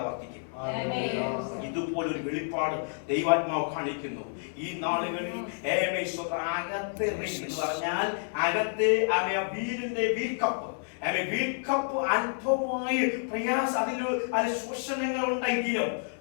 വർദ്ധിക്കും. ഇതുപോലൊരു വെളിപ്പാട് ദൈവാത്മാവ് കാണിക്കുന്നു ഈ നാളുകളിൽ. അകത്ത് എന്ന് പറഞ്ഞാൽ അകത്ത് വീലിന്റെ വീൽക്കപ്പ് അല്പമായി പ്രയാസ അതിൽ ശോഷണങ്ങൾ ഉണ്ടെങ്കിലും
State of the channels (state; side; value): silent; right; 57 dB below the other